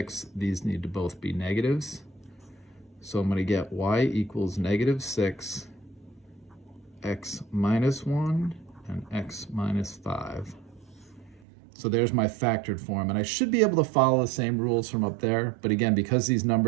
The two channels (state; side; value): drops out; left; at 11.4 s